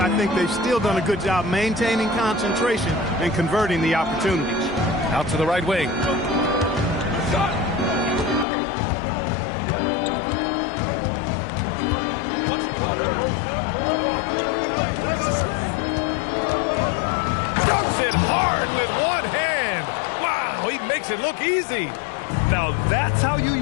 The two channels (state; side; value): drops out; right; at 8.5 s